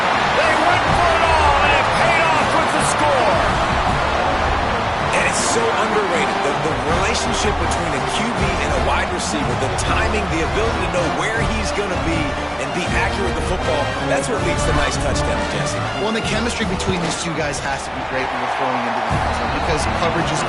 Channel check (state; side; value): identical; both; correlation 1.00